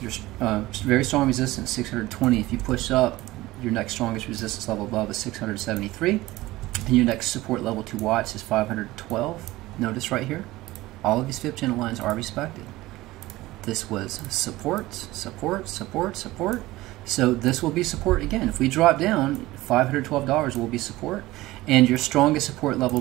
your very strong resistance, 620. If you push up, your next strongest resistance level above is 673. And your next support level to watch is 512. Notice right here, all of these fib channel lines are respected. This was support, support, support, support. So this will be support again. If we drop down, $512 will be support. And your strongest support level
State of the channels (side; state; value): left; quieter; 18.2 dB